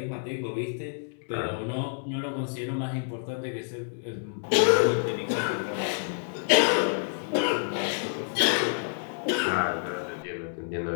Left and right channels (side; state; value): right; silent; digital silence